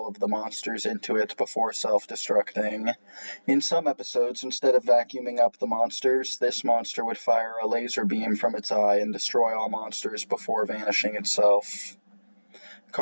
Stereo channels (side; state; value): both; inverted; correlation -1.00